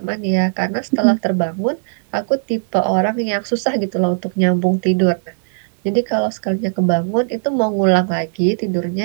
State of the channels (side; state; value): left; silent; digital silence